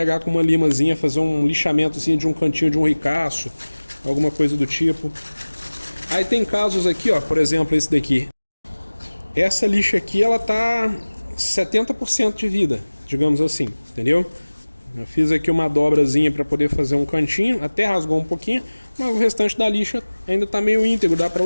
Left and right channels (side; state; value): both; inverted; correlation -1.00